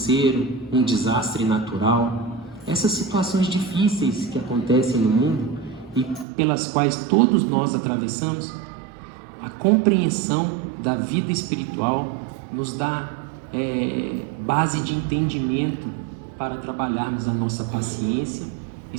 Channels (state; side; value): drops out; left; at 6.2 s